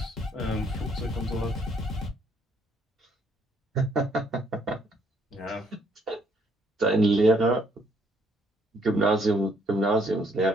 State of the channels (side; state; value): both; normal; correlation 0.67